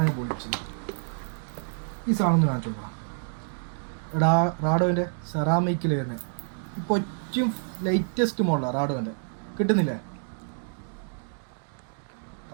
പൊളിച്ചില്ല. ഈ സാധനം കാണിച്ചു കൊടുക്കണം. റാഡോന്റെ സെറാമിക്കിൽ വരുന്നത് ഇപ്പോൾ ഏറ്റവും ലേറ്റസ്റ്റ് മോഡലാണ് റാഡോന്റെ. കിട്ടുന്നില്ലേ?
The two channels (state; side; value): silent; left; digital silence